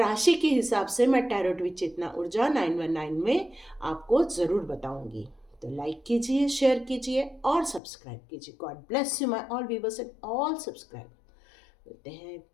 के हिसाब से मैं टैरोट विद चेतना ऊर्जा 919 में आपको ज़रूर बताऊंगी। तो लाइक कीजिए, शेयर कीजिए और सब्सक्राइब कीजिए। God bless you my all viewers and all subscribe. मिलते हैं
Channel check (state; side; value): drops out; right; at 7.8 s